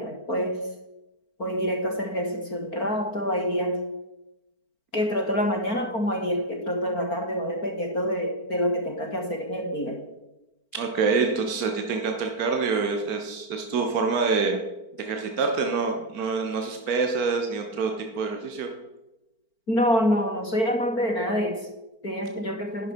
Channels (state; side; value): late; right; 4.4 ms